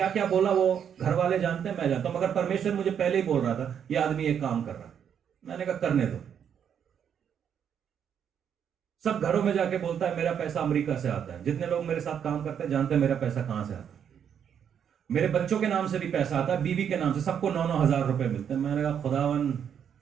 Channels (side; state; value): left; quieter; 8.3 dB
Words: क्या बोला वो घर वाले जानते हैं, मैं जानता हूं, मगर परमेश्वर मुझे पहले ही बोल रहा था ये आदमी एक काम कर रहा है। मैंने कहा करने दो। सब घरों में जाके बोलता है मेरा पैसा अमेरिका से आता है। जितने लोग मेरे साथ काम करते हैं जानते हैं मेरा पैसा कहां से आता है। मेरे बच्चों के नाम से भी पैसा आता है, बीवी के नाम से, सबको 9-9 हजार रुपए मिलते हैं। मैंने कहा खुदावन